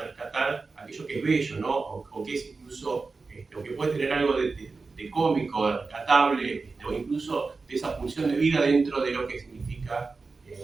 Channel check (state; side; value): quieter; left; 4.1 dB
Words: aquello que es bello, ¿no? O que es incluso, o que puede tener algo de cómico, de rescatable, o incluso de esa función de vida dentro de lo que significa